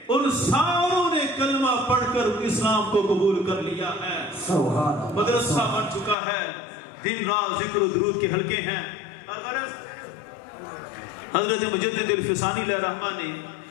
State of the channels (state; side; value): drops out; right; at 6.2 s